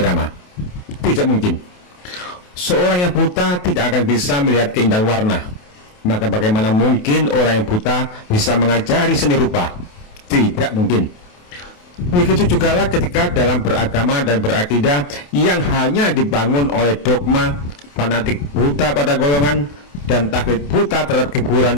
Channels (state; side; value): late; right; 28 ms